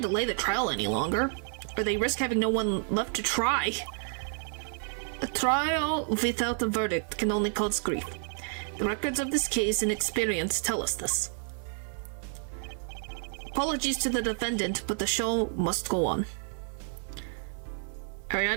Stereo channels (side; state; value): left; silent; 56 dB below the other